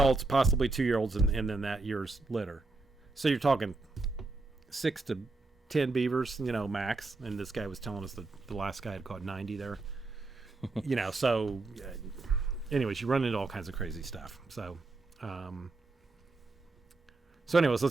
possibly 2-year-olds, and then that year's litter. So you're talking 6 to 10 beavers, max. And this guy was telling us that the last guy had caught 90 there. So anyways, you run into all kinds of crazy stuff. So anyways,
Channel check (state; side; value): quieter; left; 3.4 dB